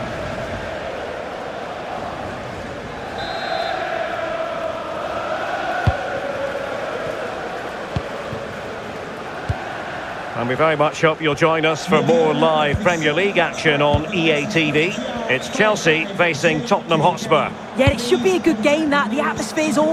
And we very much hope you'll join us for more live Premier League action on EA TV. It's Chelsea facing Tottenham Hotspur. Yeah, it should be a good game, that. The atmosphere's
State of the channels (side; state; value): both; identical; correlation 1.00